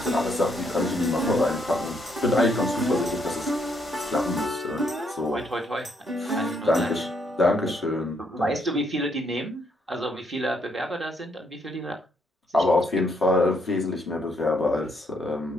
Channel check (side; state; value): both; normal; correlation 0.73